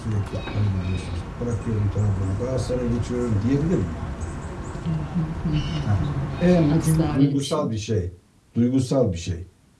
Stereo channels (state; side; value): identical; both; correlation 1.00